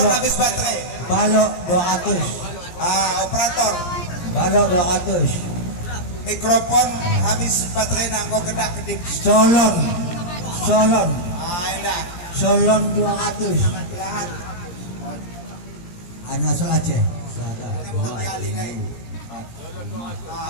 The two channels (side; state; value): right; late; 17 ms